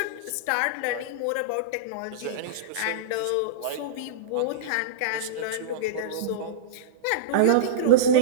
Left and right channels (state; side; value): different; both; correlation -0.04